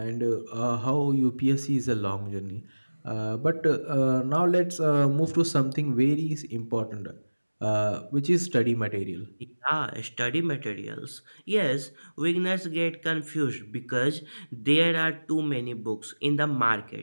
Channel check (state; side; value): inverted; both; correlation -1.00